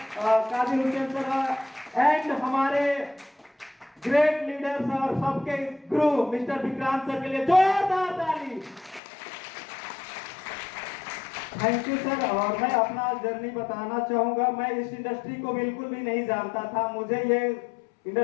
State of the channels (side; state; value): right; drops out; at 9.0 s